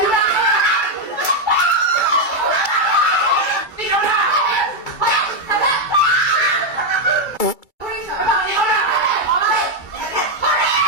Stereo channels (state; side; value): late; right; 2.3 ms